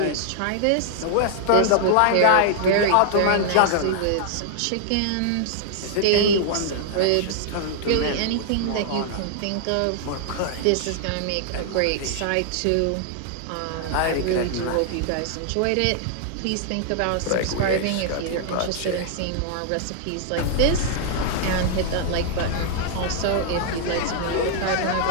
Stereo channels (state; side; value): different; both; correlation -0.01